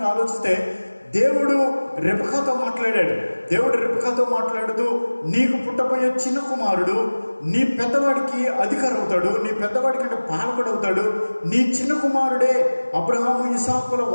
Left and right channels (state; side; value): inverted; both; correlation -1.00